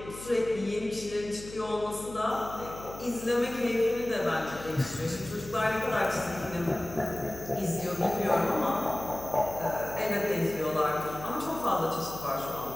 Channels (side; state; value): left; noise; hum, 14 dB below the sound